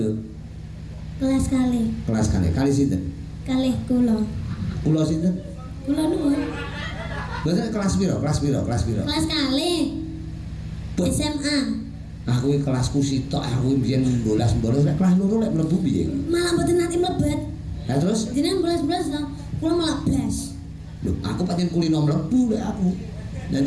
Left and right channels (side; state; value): both; identical; correlation 1.00